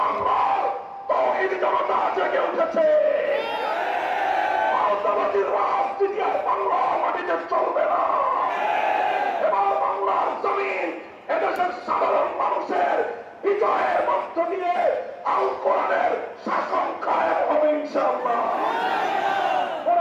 তৌহিদি জনতা জেগে উঠেছে। আওতাবাদীর রাজনীতি আর বাংলার মাটিতে চলবে না। এবার বাংলার জমিন এদেশের সাধারণ মানুষের বিজয়ের মধ্য দিয়ে আল কোরআনের শাসন কায়েম হবে ইনশাআল্লাহ।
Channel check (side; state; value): both; identical; correlation 1.00